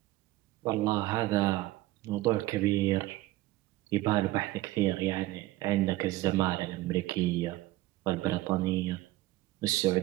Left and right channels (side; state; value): left; quieter; 17.4 dB